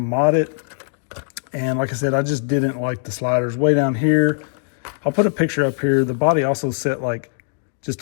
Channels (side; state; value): right; silent; digital silence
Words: it. And like I said, I just didn't like the sliders way down here. I'll put a picture up here. The body also set like